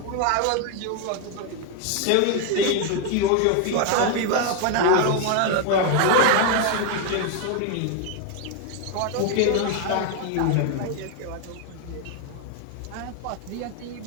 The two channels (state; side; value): different; both; correlation 0.01